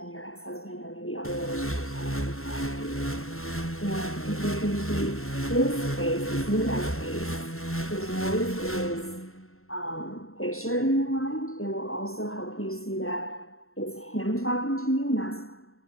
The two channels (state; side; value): late; right; 0.62 ms